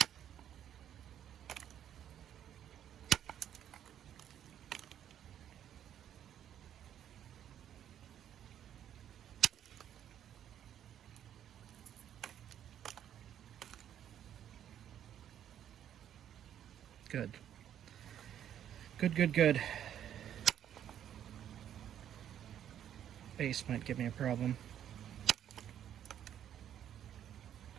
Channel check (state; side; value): quieter; left; 10.2 dB